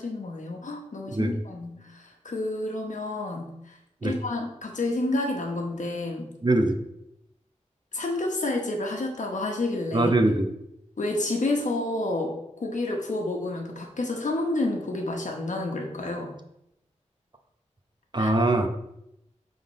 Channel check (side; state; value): both; normal; correlation 0.71